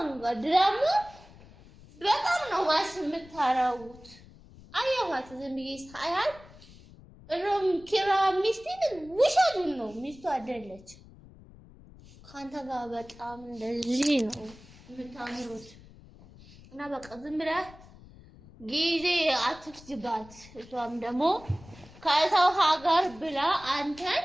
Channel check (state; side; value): noise; left; rumble, 21 dB below the sound